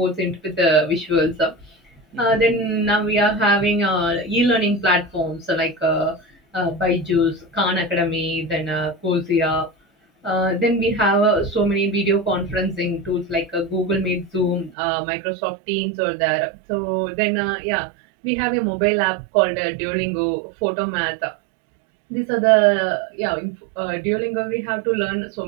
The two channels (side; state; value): left; drops out; at 14.7 s